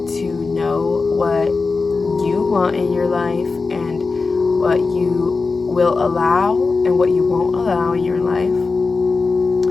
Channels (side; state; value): right; quieter; 4.2 dB